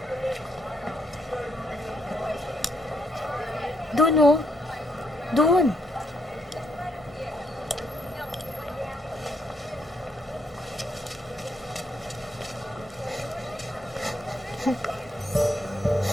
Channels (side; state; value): both; normal; correlation 0.75